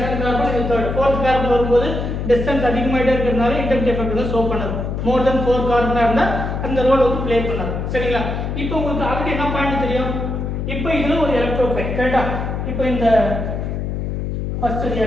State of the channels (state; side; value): noise; left; hum, 3 dB below the sound